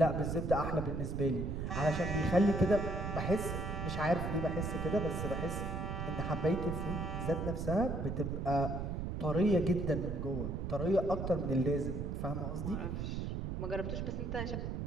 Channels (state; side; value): noise; right; rumble, 3 dB below the sound